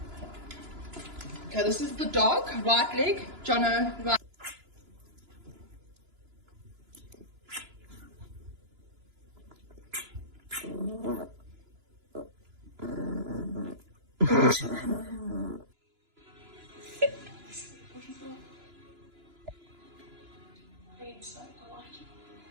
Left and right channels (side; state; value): left; late; 2.9 ms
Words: this is the dog, right leg, Jono, right.